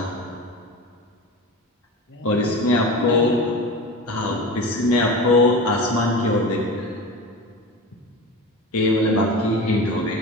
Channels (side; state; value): both; normal; correlation 0.30